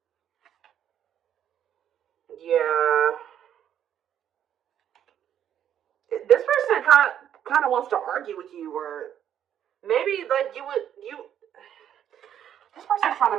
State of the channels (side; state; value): left; quieter; 9.9 dB